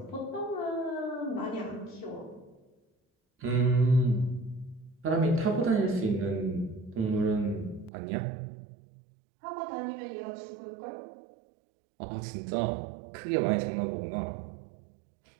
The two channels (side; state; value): left; drops out; at 7.9 s